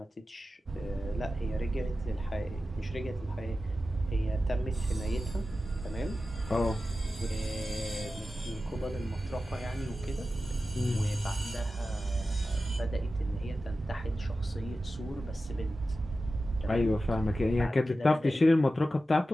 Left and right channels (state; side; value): normal; both; correlation 0.93